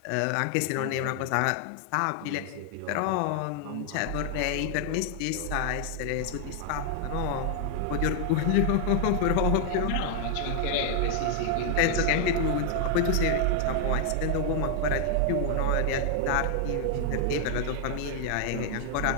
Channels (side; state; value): both; different; correlation 0.00